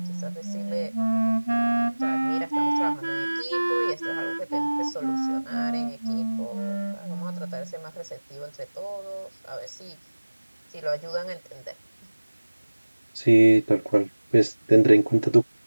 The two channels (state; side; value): inverted; both; correlation -1.00